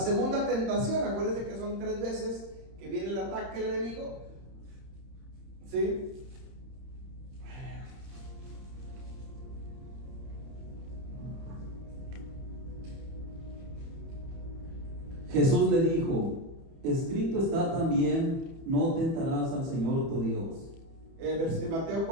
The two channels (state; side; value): late; left; 30 ms